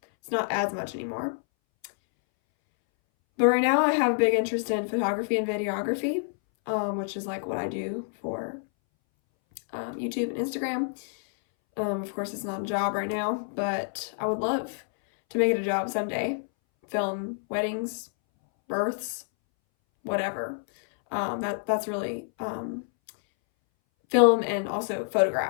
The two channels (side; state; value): right; silent; 60 dB below the other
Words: It's not as much anymore. But right now I have a big interest in photography and videography, which is like what I do for YouTube and Instagram. Of course, it's not a job right now, but I would love to make it a job someday. Film weddings, births, whatever. That's really film and also